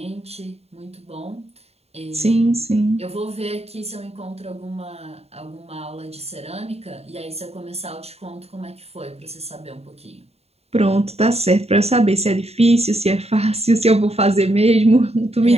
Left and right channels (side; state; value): left; late; 0.30 ms